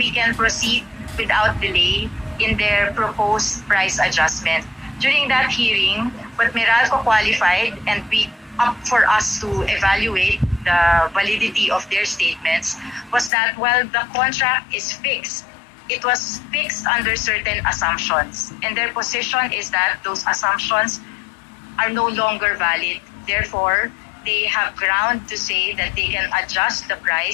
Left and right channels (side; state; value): right; drops out; at 13.3 s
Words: can proceed without delay in their proposed price adjustment. During that hearing, what Meralco qualified and we up for us to evaluate the validity of their statements was that while the contract is fixed, it was fixed under certain assumptions. And their position is that those assumptions are no longer valid. Therefore, they have ground to say that they can adjust the